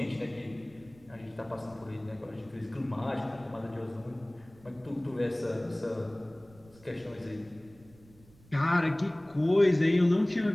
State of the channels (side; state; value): right; noise; rumble, 26 dB below the sound